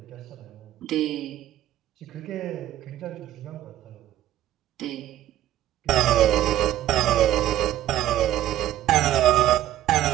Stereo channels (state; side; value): quieter; left; 12.9 dB